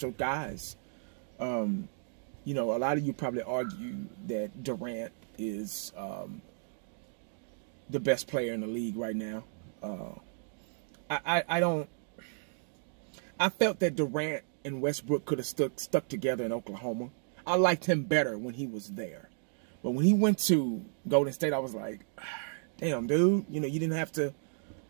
guys. You know, a lot of you probably argue that Durant is the best player in the league right now. I felt that Durant and Westbrook could have stuck together in Oklahoma. I liked him better when he was there. But when he went to Golden State, I was like, damn, dude, you know, you didn't have to,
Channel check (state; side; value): silent; left; digital silence